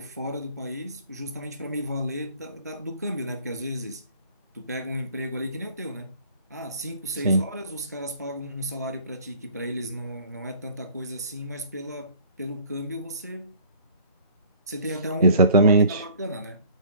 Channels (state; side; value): inverted; both; correlation -0.52